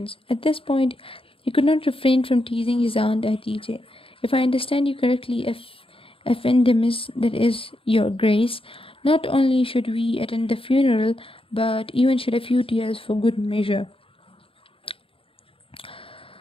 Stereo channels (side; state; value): right; late; 0.26 ms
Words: At this point, he could not refrain from teasing his aunt Hatice. If I understand you correctly, Effendemis, that is, your grace, not only should we attend the funeral, but even shed a few tears for good measure.